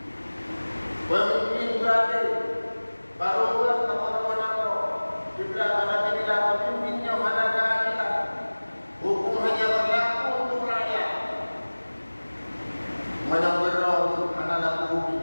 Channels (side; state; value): both; inverted; correlation -1.00